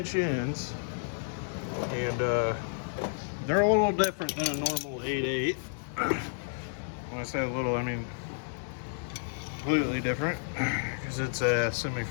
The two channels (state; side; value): silent; right; 57 dB below the other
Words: ends, and they're a little different than a normal 8/8. When I say a little, I mean completely different, because it's a